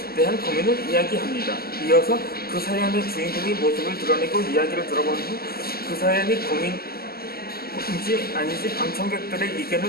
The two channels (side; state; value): right; late; 0.45 ms